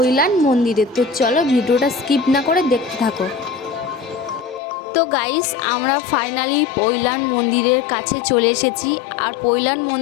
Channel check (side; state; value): right; drops out; at 4.6 s